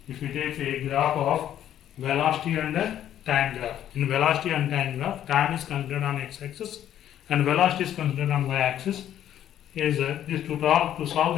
if you take a graph of velocity and a time graph. In velocity and time graph, time is considered on x-axis and velocity is considered on y-axis. Is this to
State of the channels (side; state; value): right; quieter; 11.0 dB